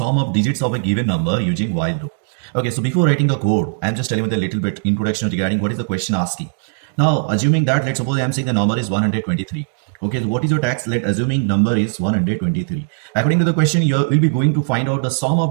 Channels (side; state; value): left; silent; digital silence